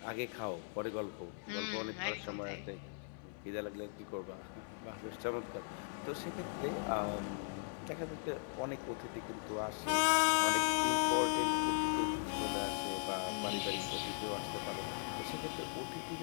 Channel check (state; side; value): silent; right; 52 dB below the other